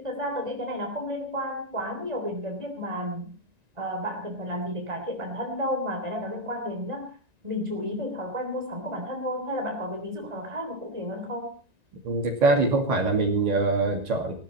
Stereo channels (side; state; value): left; late; 1.9 ms